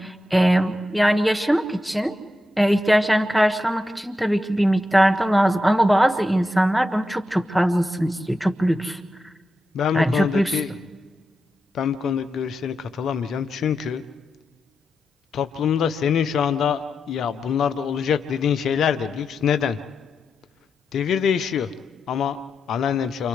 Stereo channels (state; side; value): normal; both; correlation 0.87